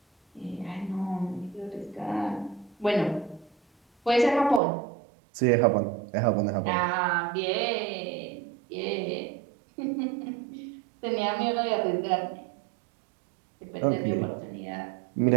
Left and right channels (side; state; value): left; drops out; at 4.6 s